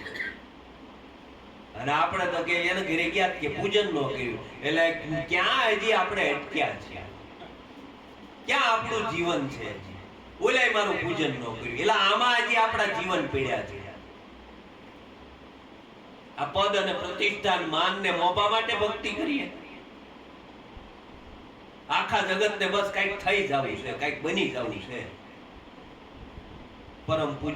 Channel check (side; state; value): both; identical; correlation 1.00